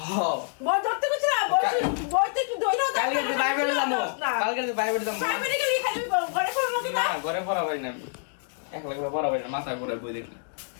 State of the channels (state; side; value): silent; right; digital silence